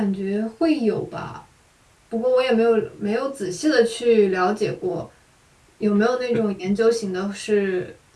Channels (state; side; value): identical; both; correlation 1.00